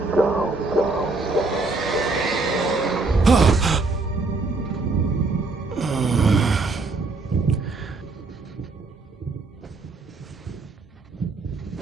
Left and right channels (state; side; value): quieter; left; 3.6 dB